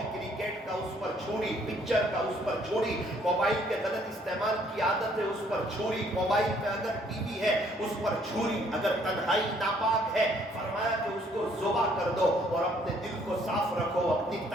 کرکٹ کا، اس پر چھری، پکچر کا، اس پر چھری، موبائل کے غلط استعمال کی عادت ہے، اس پر چھری، موبائل پہ اگر ٹی وی ہے اس پر چھری، اگر تنہائی ناپاک ہے فرمایا کہ اس کو ذبح کر دو، اور اپنے دل کو صاف رکھو، اپنی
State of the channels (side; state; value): both; normal; correlation 0.64